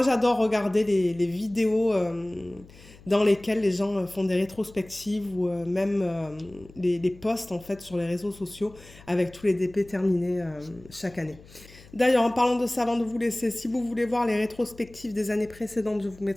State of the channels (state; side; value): noise; left; hum, 22 dB below the sound